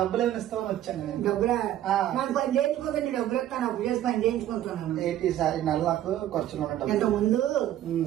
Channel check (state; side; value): quieter; left; 12.3 dB